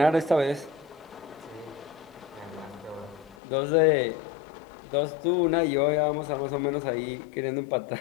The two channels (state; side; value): drops out; right; at 3.4 s